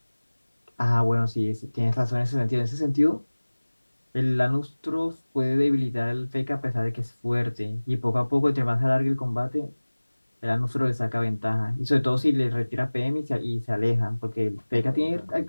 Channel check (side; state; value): both; inverted; correlation -1.00